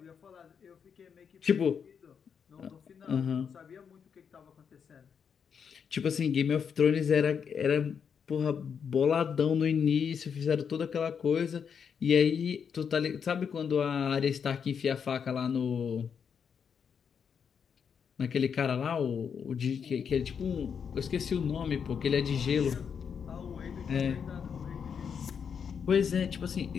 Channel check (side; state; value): right; quieter; 6.9 dB